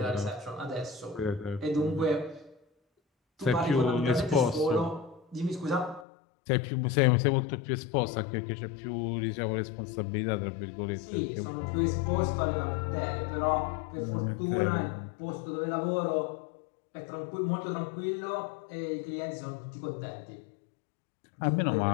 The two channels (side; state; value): right; drops out; at 6.1 s